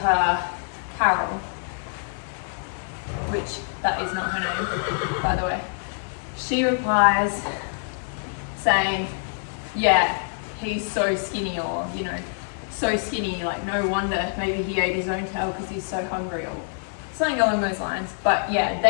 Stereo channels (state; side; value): silent; right; digital silence